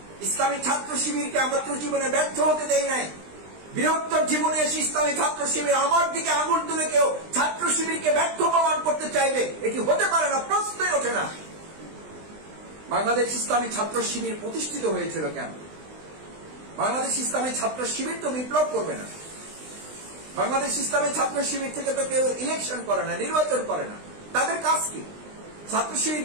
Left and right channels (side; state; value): left; late; 20 ms